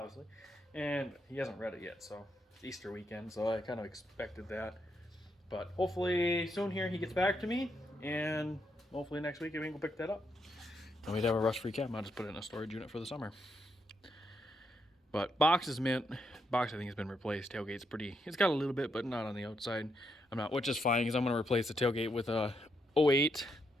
and he hasn't read it yet. So it's Easter weekend, so I kind of expected that. But hopefully soon here he gets back to me, and hopefully next week we can go pick that up. And we'd have a rust-free cab. I'll just put it in a storage unit for the summer. But box is mint. Box I think has been replaced. Tailgate's pretty. It's got a little bit, but not on the outside. I'm not, which is fine because I'm gonna replace the tailgate with a 08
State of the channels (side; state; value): both; normal; correlation 0.79